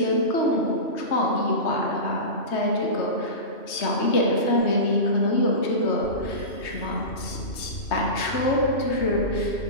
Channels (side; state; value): right; late; 3.2 ms